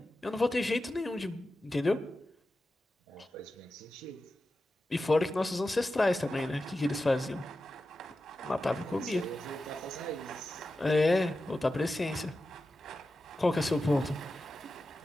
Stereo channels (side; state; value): both; normal; correlation 0.92